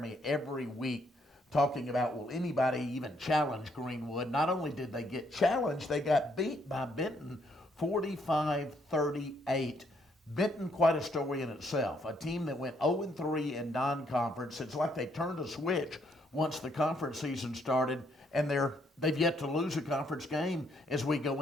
every week talking about, will anybody even challenge Greenwood? Not only did they get challenged, they got beat by Benton 45-38. Benton, quite a story in itself. A team that went 0-3 in non-conference. It's like they turned a switch once the conference season started, and they've yet to lose a conference game as we go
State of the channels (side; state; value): both; normal; correlation 0.71